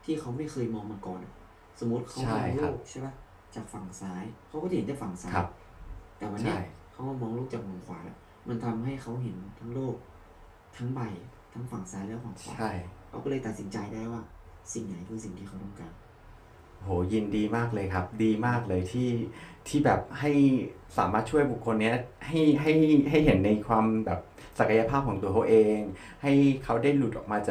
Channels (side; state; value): both; identical; correlation 1.00